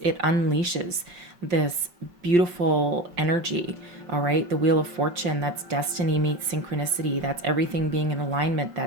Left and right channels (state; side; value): late; left; 5.3 ms